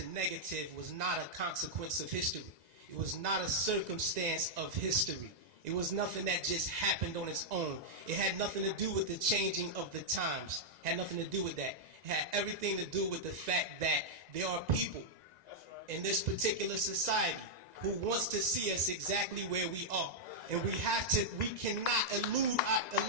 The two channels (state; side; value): late; left; 1.9 ms